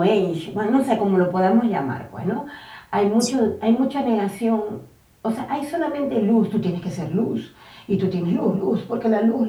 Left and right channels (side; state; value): both; identical; correlation 1.00